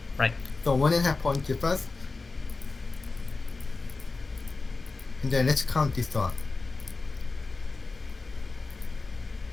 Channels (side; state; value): right; quieter; 3.8 dB